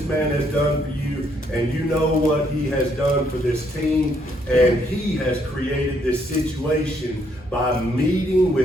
man has done for you, and you know what he has done for this team, and he has created this situation by meeting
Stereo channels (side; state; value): both; normal; correlation 0.71